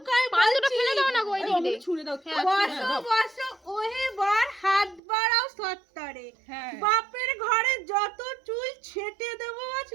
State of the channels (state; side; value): drops out; left; at 5.0 s